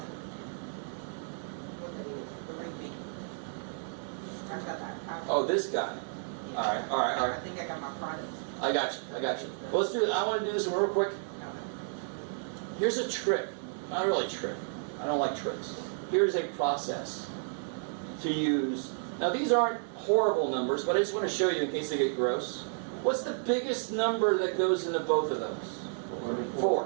repeat. I got that. Oh, this guy. Alright. I think I got my product. I got you. Well, let's do it. I want to do this one real quick. Here's a trick. Not really a trick. I don't like tricks. Here's a process to use. Now, these aren't horrible numbers, but I just want to show you in case they get gross. What's the biggest number that goes into both of those?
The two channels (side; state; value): left; silent; digital silence